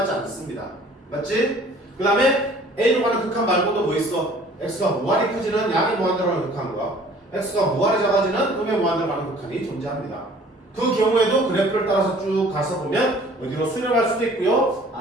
않습니다. 맞지? 그 다음에 a로 가는 극한 말고도 뭐 있어? x가 무한히 커지는 양의 무한대로 가는 극한과 x가 무한히 작아지는 음의 무한대로 가는 극한이 존재합니다. 그 경우에도 그래프를 따라서 쭉 가서 보면 어디로 수렴할 수도 있고요.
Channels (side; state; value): both; normal; correlation 0.52